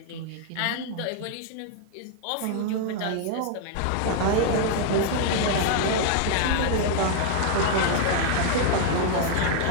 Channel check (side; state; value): both; different; correlation 0.00